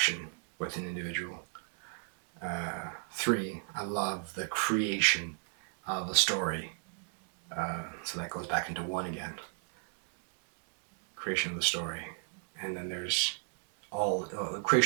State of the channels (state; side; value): silent; left; 54 dB below the other